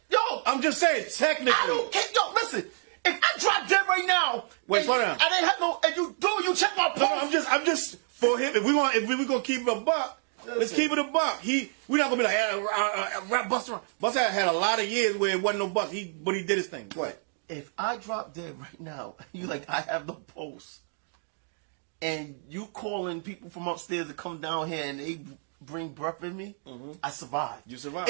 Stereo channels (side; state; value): left; silent; 59 dB below the other